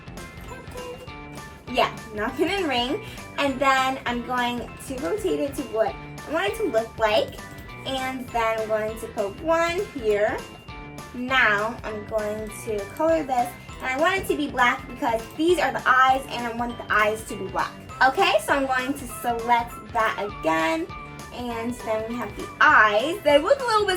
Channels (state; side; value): identical; both; correlation 1.00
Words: Yeah, napkin and ring. And then I'm going to rotate it to what I want it to look like. And then I'm going to put one here. Now I'm going to color this. And I want it to be black because these are the eyes and I want the eyes to be black. Okay, so I'm going to select that again. And then we have the eyes. They look a little